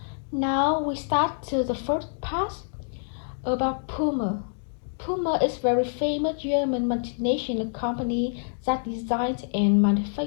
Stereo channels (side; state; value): right; silent; digital silence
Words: Now we start to the first part about Puma. Puma is a very famous German multinational company that designs and